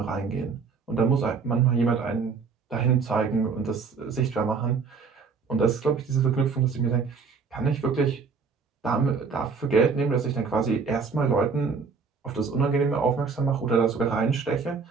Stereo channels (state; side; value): quieter; left; 5.2 dB